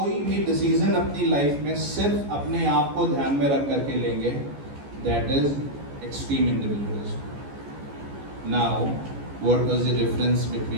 भी डिसीजन अपनी लाइफ में सिर्फ अपने आप को ध्यान में रख करके लेंगे, that is extreme individualism. Now what was the difference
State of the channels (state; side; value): late; left; 14 ms